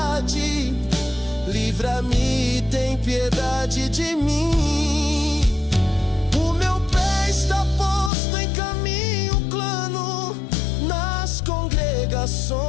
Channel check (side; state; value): right; drops out; at 8.1 s